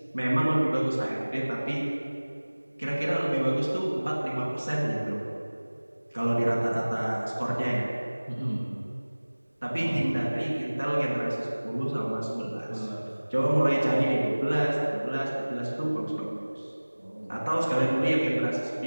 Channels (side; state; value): both; inverted; correlation -1.00